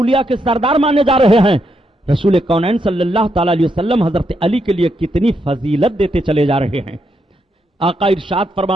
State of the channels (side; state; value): both; normal; correlation 0.80